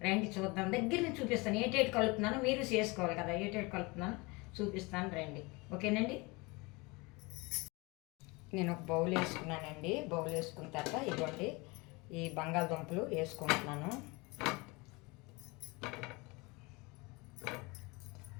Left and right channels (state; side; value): quieter; right; 25.9 dB